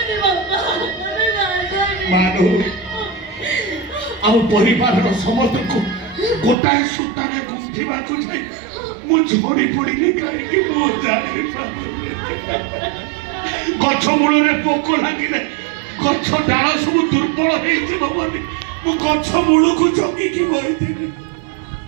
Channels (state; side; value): drops out; left; at 6.6 s